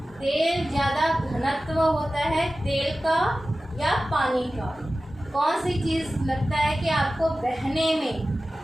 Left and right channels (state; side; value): normal; both; correlation 0.95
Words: तेल ज़्यादा घनत्व होता है तेल का या पानी का, कौन सी चीज़ लगता है कि आपको बहने में